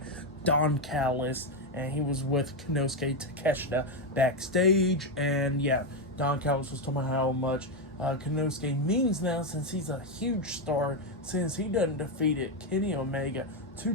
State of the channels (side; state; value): both; normal; correlation 0.06